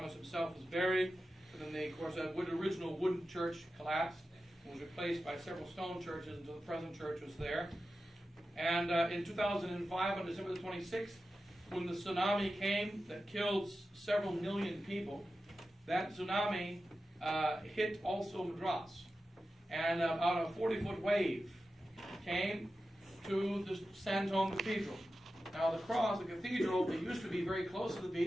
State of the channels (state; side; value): normal; both; correlation 0.93